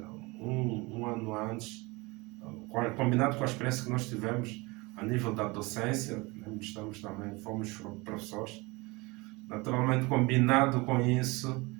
um ano antes, combinado com a experiência que nós tivemos a nível da docência, fomos professores, naturalmente combinado com isso,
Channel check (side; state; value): left; quieter; 24.7 dB